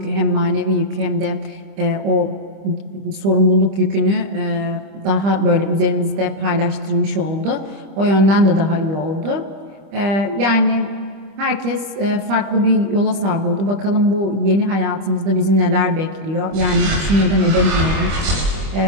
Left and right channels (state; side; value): late; left; 25 ms